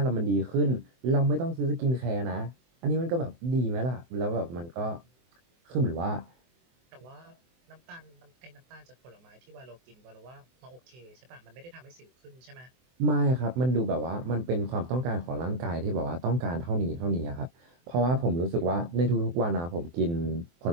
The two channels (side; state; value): left; late; 24 ms